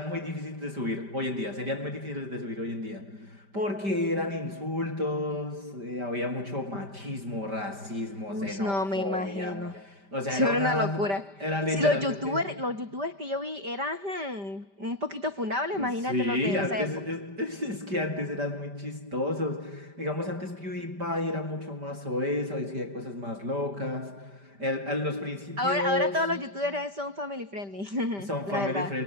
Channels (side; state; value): left; late; 5.1 ms